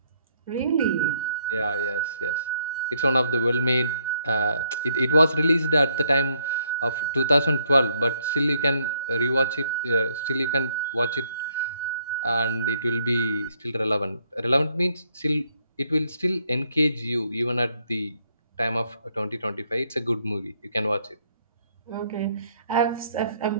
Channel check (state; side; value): inverted; both; correlation -0.69